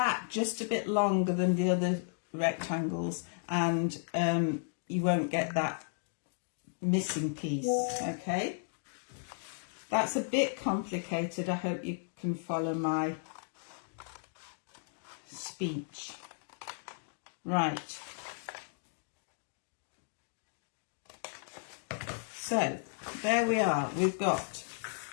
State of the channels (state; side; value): silent; right; digital silence